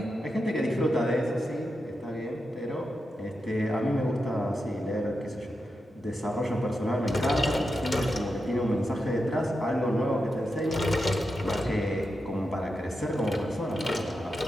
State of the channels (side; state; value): both; normal; correlation 0.88